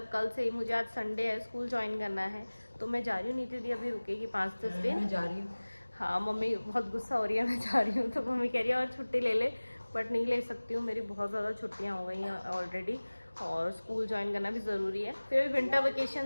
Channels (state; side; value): inverted; both; correlation -1.00